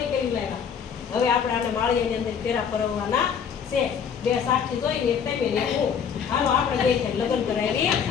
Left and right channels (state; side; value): quieter; right; 7.2 dB